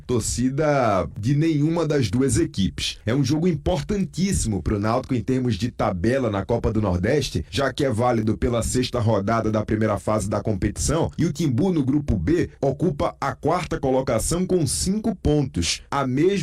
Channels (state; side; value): identical; both; correlation 1.00